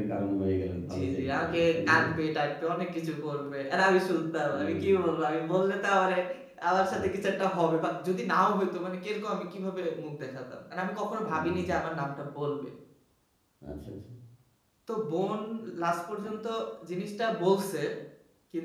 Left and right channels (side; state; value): both; identical; correlation 1.00